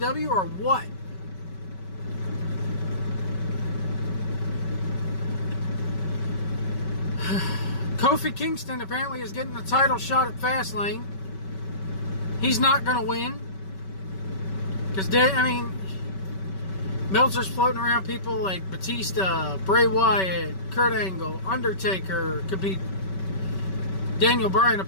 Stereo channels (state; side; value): late; right; 5.2 ms